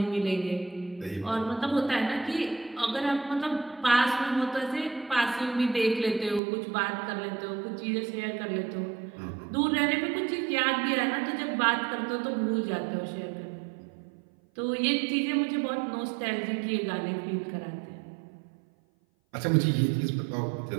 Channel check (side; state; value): left; drops out; at 6.4 s